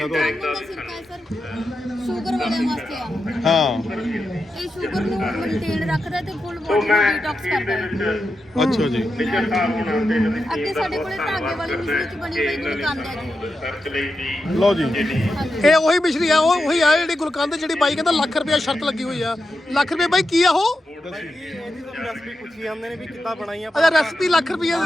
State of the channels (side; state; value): both; normal; correlation 0.88